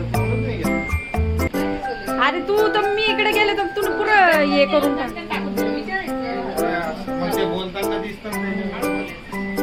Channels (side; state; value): both; identical; correlation 1.00